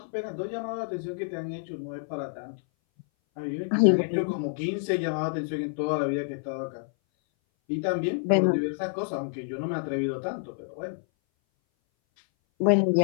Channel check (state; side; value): silent; right; 58 dB below the other